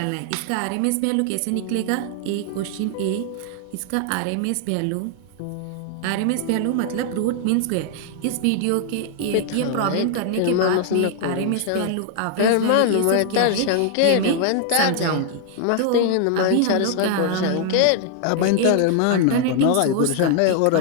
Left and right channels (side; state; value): both; different; correlation 0.00